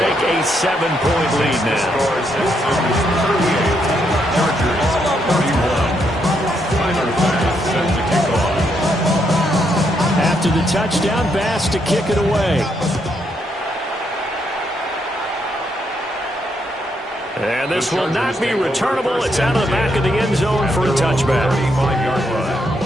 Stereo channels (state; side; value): normal; both; correlation 0.77